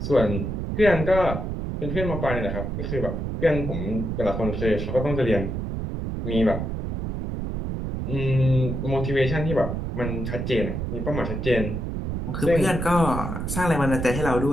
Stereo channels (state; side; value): noise; right; rumble, 3 dB below the sound